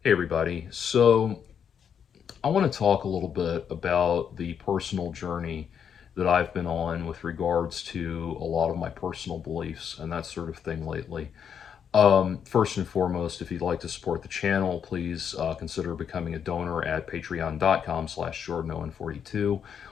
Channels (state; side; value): quieter; right; 7.8 dB